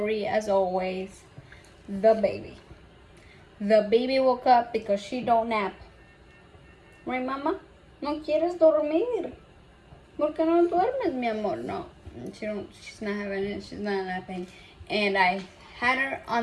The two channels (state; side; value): identical; both; correlation 1.00